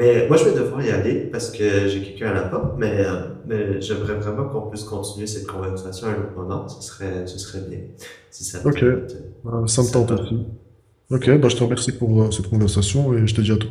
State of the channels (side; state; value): both; identical; correlation 1.00